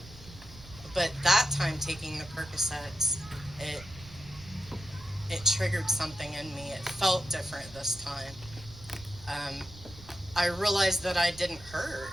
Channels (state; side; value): noise; right; rumble, 18 dB below the sound